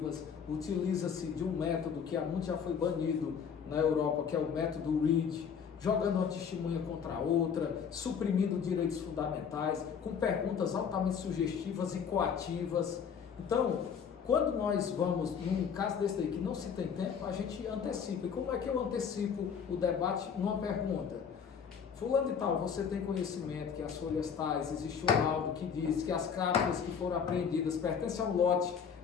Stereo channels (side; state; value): right; quieter; 7.0 dB